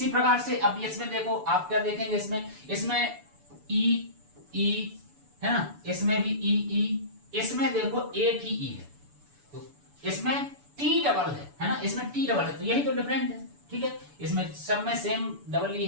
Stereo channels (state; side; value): late; left; 6.9 ms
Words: प्रकार से अब इसमें देखो, आप क्या देखेंगे, इसमें ई है ना, इसमें भी ई, इसमें देखो एक ही ई है, तो इसमें टी डबल है ना, इसमें टी डबल है, तो यही तो डिफरेंट है। ठीक है, इसमें सब में सेम डबल ई